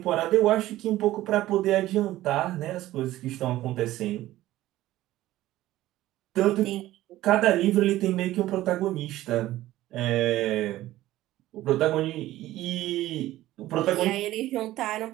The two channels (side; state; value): left; quieter; 15.5 dB